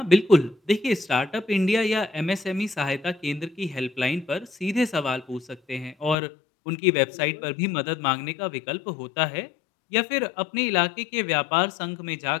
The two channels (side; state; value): right; drops out; at 6.2 s